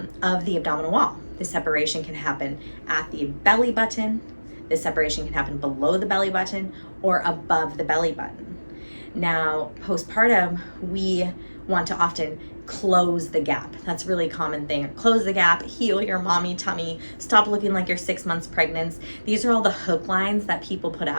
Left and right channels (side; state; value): both; inverted; correlation -1.00